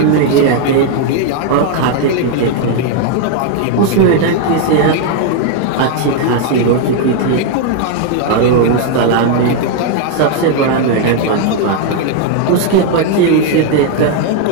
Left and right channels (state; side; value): different; both; correlation 0.00